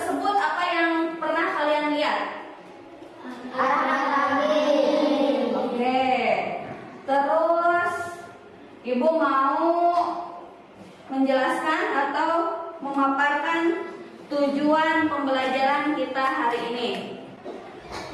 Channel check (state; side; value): identical; both; correlation 1.00